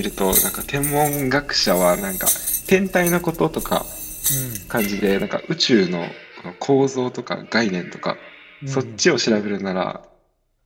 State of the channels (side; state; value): both; identical; correlation 1.00